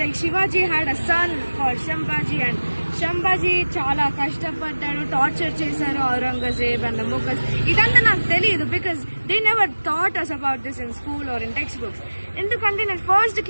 Shivaji had a son called Sambhaji and Sambhaji చాలా కష్టపడ్డాడు, టార్చర్ చేశారు ఔరంగజేబ్ అండ్ ముఘల్స్. ఇదంతా నాకు తెలియదు because they never thought us about this in school or in textbooks. ఎందుకంటే నేను ఫస్ట్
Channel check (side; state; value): both; inverted; correlation -1.00